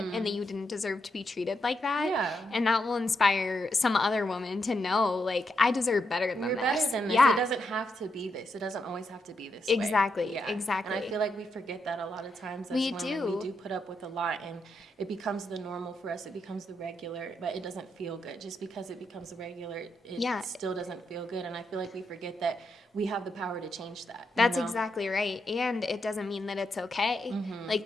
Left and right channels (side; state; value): both; normal; correlation 0.82